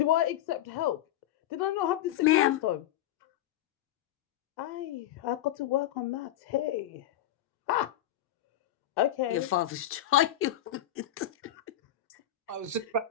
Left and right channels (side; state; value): right; quieter; 11.6 dB